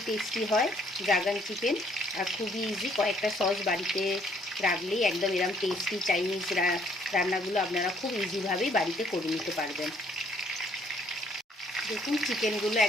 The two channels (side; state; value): both; normal; correlation 0.65